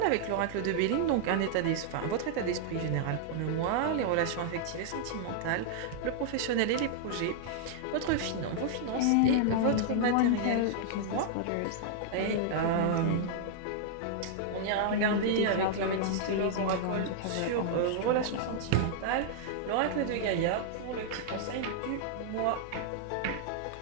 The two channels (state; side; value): different; both; correlation -0.01